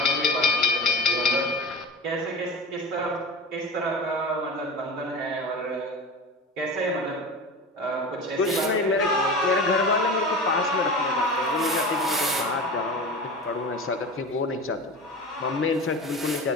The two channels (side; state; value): both; normal; correlation 0.30